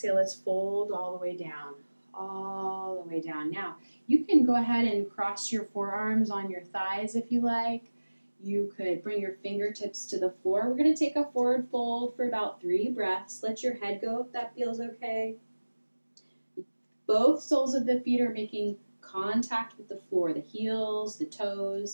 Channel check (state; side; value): inverted; both; correlation -1.00